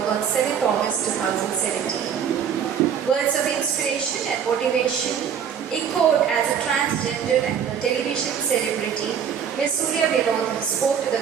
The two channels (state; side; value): quieter; left; 7.9 dB